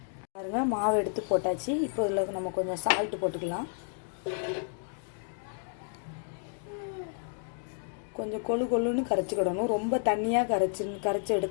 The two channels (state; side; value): silent; right; 57 dB below the other